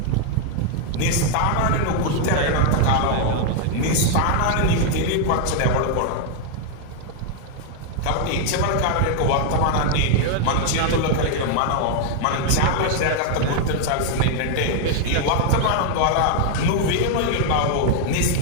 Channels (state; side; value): different; both; correlation 0.00